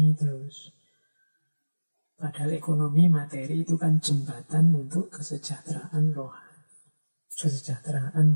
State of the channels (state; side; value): inverted; both; correlation -1.00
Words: terus. Padahal ekonomi, materi itu kan jembatan untuk kesejahteraan rohani, kesejahteraan